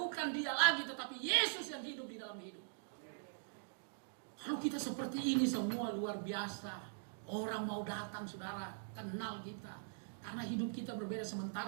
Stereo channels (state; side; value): silent; left; digital silence